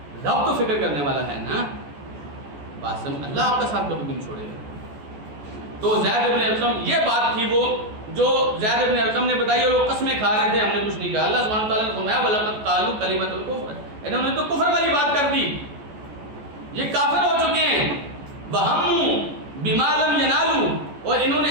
رب تو فکر کرنے والا ہے نا. بات سمجھ, اللہ آپ کا ساتھ کبھی بھی نہیں چھوڑے گا. تو زید بن ارقم, یہ بات تھی وہ جو زید بن ارقم نے بتائی, اور وہ قسمیں کھا رہے تھے, ہم نے کچھ نہیں کہا. اللہ سبحانہ تعالیٰ نے فرمایا وَلَقَدْ قَالُوا كَلِمَةَ الْكُفْرِ, انہوں نے تو کفر والی بات کر دی, یہ کافر ہو چکے ہیں. وَهَمُّوا بِمَا لَمْ يَنَالُوا, اور انہوں نے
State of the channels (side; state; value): left; late; 14 ms